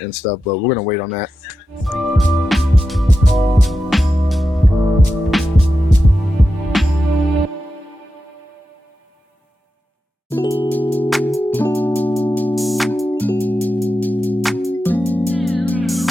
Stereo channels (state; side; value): normal; both; correlation 0.90